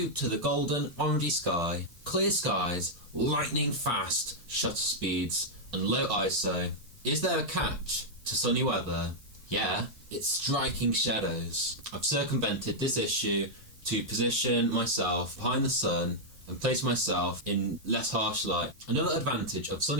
to the golden orangey sky, clear skies, lightning fast shutter speeds, and low ISO. Is there a catch to sunny weather? Yeah, it's striking shadows. I've circumvented this issue to position myself behind the sun and place myself in less harsh light. Another advantage of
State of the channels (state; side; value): late; left; 6.0 ms